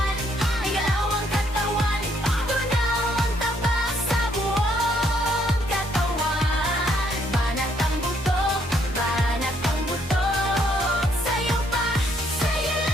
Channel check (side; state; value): both; normal; correlation 0.70